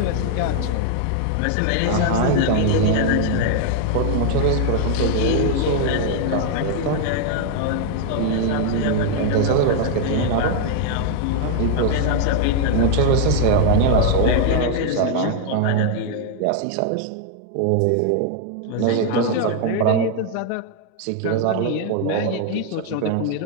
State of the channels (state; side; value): different; both; correlation 0.00